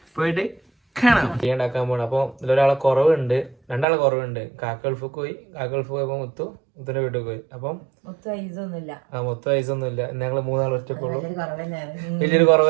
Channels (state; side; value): drops out; left; at 3.9 s